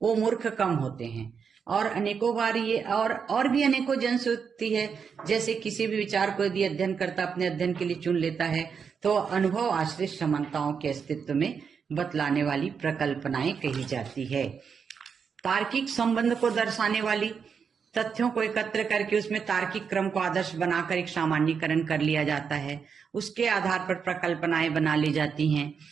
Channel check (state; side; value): quieter; left; 6.3 dB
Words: वो मूर्ख कम होते हैं। और अनेकों बार ये और भी अनेकों जन होती है। जैसे किसी भी विचार को यदि अध्ययनकर्ता अपने अध्ययन के लिए चुन लेता है तो अनुभव आश्रित समानताओं के अस्तित्व में बतलाने वाली प्रकल्पनाएं कही जाती है। तार्किक संबंध को दर्शाने वाली तथ्यों को एकत्र करके उसमें तार्किक क्रम को आदर्श बनाकर एक सामान्यीकरण कर लिया जाता है। उसके आधार पर प्रकल्पनाएं बना ली जाती हैं।